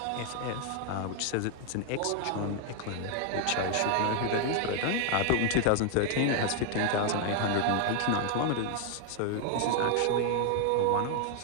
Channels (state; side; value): different; both; correlation 0.00